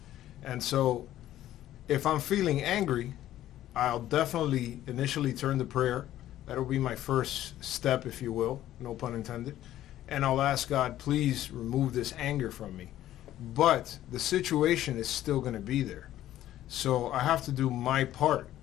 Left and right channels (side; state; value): right; quieter; 13.2 dB